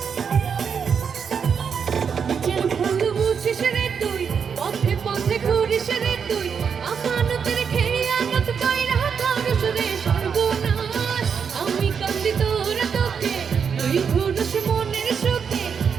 তুই পথে পথে ঘুরিস রে তুই আমানতের খেয়ানত কইরা করস রে সর্বনাশ। আমি কান্দি তোরা তোকে তুই ঘুরস মনের সুখে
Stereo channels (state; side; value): quieter; left; 6.7 dB